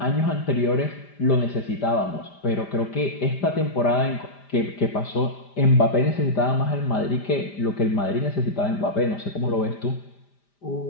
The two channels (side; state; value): right; late; 5.0 ms